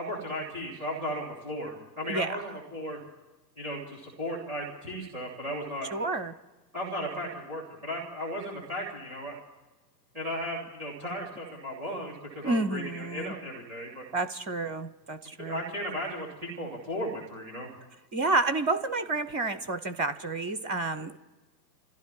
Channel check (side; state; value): left; late; 2.2 ms